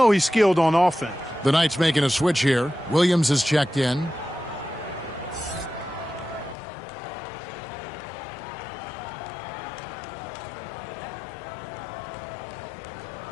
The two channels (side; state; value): right; drops out; at 6.6 s